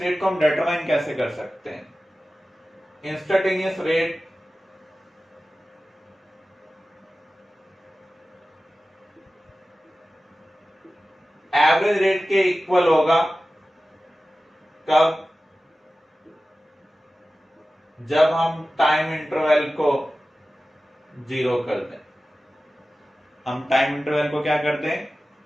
को हम डिटरमाइन कैसे कर सकते हैं? इंस्टेंटेनियस रेट एवरेज रेट के इक्वल होगा कब? जब हम टाइम इंटरवल को जीरो कर दें। हम टाइम इंटरवल को क्या कर दें?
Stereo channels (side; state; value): both; normal; correlation 0.95